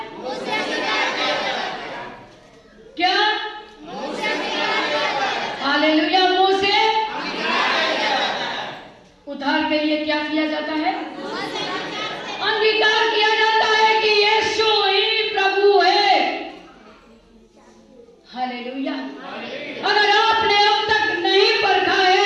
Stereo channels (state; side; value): identical; both; correlation 1.00